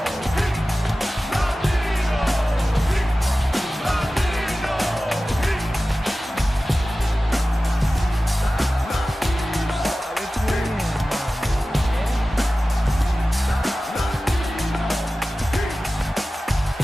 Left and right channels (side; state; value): both; normal; correlation 0.96